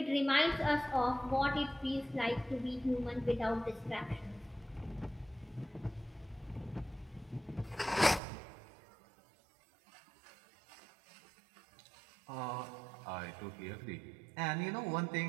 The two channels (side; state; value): left; drops out; at 8.2 s